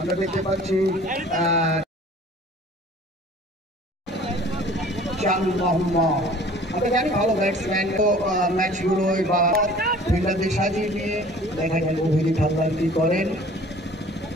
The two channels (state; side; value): normal; both; correlation 0.48